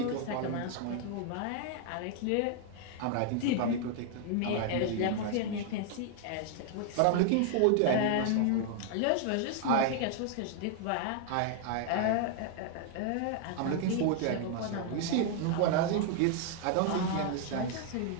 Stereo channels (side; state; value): both; different; correlation 0.00